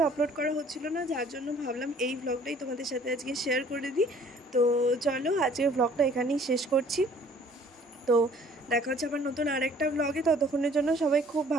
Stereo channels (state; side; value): normal; both; correlation 0.55